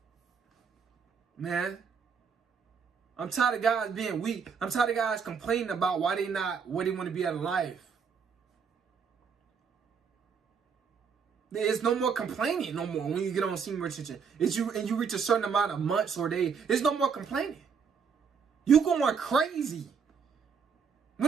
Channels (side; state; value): left; quieter; 6.2 dB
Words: man. I'm tired of guys being weak. I'm tired of guys complaining about why they not where they want to be out of life. There's no more complaining no more when you get on senior retention. You reach a certain amount of months or days. There's no more complaining. You going crazy